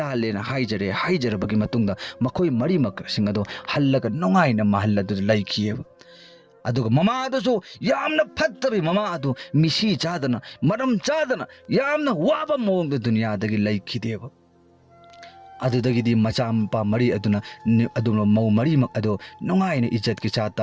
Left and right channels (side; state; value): both; identical; correlation 1.00